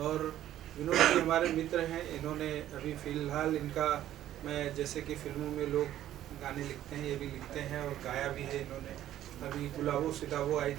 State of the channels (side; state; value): left; quieter; 12.5 dB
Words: विनोद जी हमारे मित्र हैं, इन्होंने अभी फ़िलहाल इनका, मैं जैसे कि फिल्मों में लोग गाने लिखते हैं, ये भी लिखते हैं और गाया भी है इन्होंने। अभी गुलाबो सिताबो आई